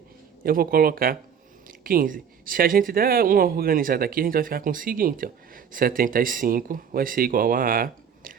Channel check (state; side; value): quieter; left; 7.6 dB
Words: Eu vou colocar 15. Se a gente der uma organizada aqui, a gente vai ficar com o seguinte, ó. 75 vai ser igual a A